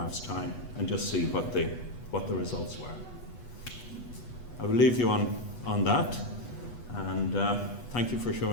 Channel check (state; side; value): late; right; 8.2 ms